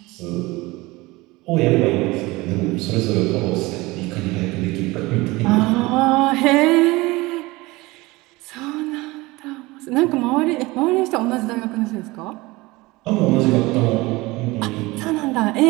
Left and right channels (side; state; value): left; quieter; 21.5 dB